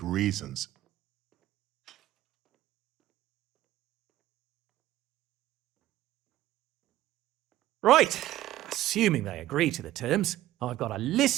reasons. Right. Assuming they agree to the terms, I've got a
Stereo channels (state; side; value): quieter; left; 14.6 dB